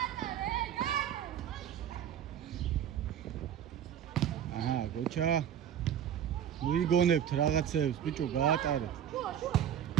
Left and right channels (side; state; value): left; quieter; 9.6 dB